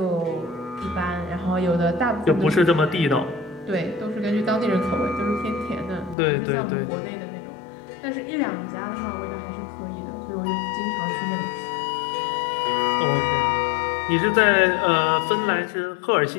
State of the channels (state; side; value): drops out; right; at 6.2 s